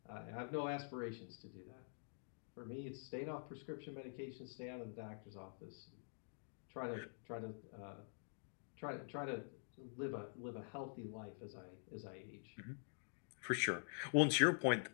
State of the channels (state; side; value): silent; right; digital silence